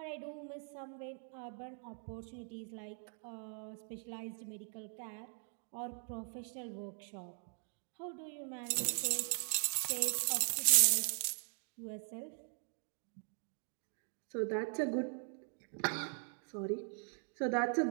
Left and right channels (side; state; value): left; silent; 51 dB below the other